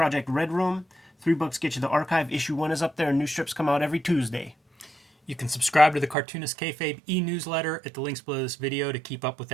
Red Room. $3 get you the archive. Issue 1 is up there, and new strips come out every Tuesday. You can subscribe to the Cartoonist Kayfabe e-newsletter at the links below this video to keep up with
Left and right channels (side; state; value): left; drops out; at 6.2 s